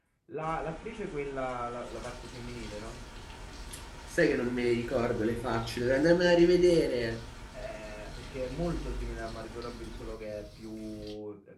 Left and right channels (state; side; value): identical; both; correlation 1.00